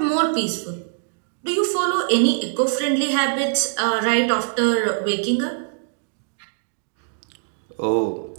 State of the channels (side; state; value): left; silent; digital silence